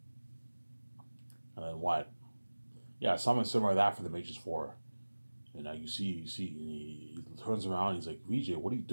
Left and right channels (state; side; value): inverted; both; correlation -1.00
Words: And then what? Yeah, something similar to that for the Matrix 4. And now you see, he turns around, he's like, VJ, what are you